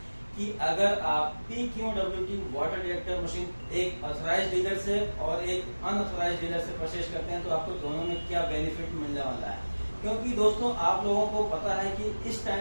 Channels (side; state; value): both; inverted; correlation -1.00